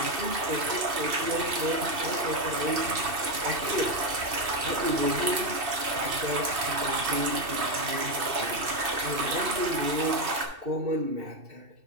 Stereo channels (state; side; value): late; left; 2.7 ms